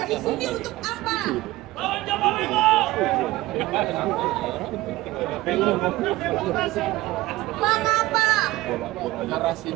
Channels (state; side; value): quieter; left; 18.3 dB